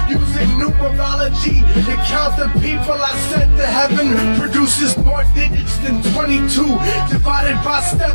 Using numerology to count the people I sent to heaven produces more digits than 22 divided by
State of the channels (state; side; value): inverted; both; correlation -1.00